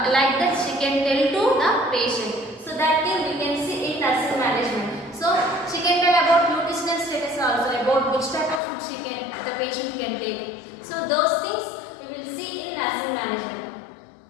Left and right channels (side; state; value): right; drops out; at 8.6 s